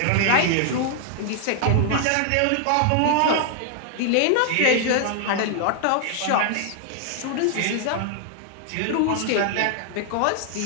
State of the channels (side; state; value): both; different; correlation 0.00